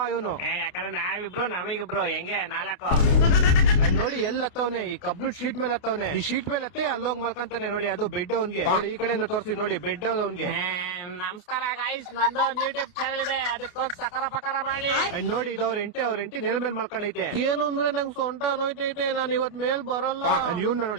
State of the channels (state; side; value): late; right; 29 ms